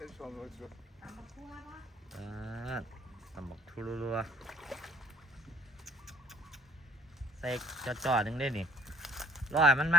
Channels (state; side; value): normal; both; correlation 0.61